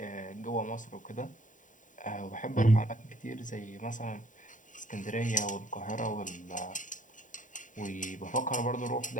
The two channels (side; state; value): right; late; 0.37 ms